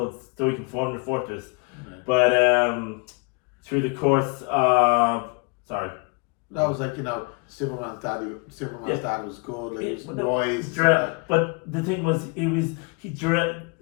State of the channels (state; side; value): quieter; right; 30.8 dB